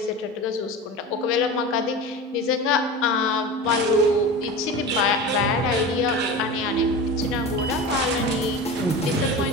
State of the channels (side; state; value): both; normal; correlation 0.30